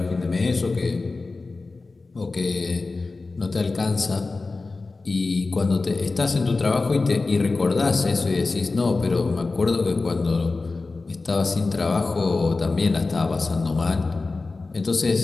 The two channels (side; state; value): right; quieter; 3.7 dB